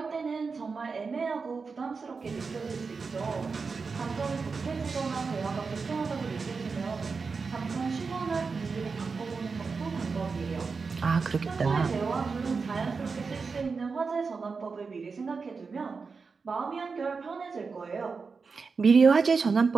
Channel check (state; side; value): quieter; left; 4.8 dB